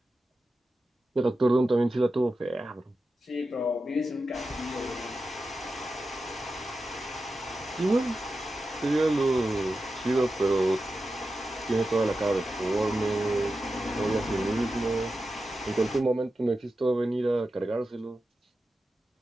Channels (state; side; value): normal; both; correlation 0.91